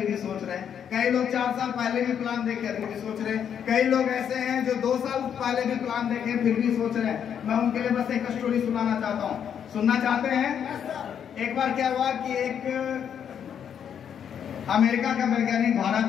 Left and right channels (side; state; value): right; quieter; 8.4 dB